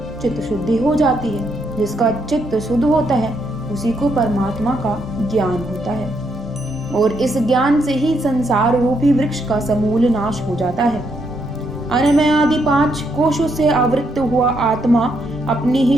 चित्त शुद्धि हो जाती है। जिसका चित्त शुद्ध होता है, उसी को परमात्मा का ज्ञान होता है और इस ज्ञान से ही संसार रूपी वृक्ष का समूल नाश हो जाता है। अन्नमय आदि 5 कोशों से आवृत्त हुआ आत्मा अपनी ही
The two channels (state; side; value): normal; both; correlation 0.76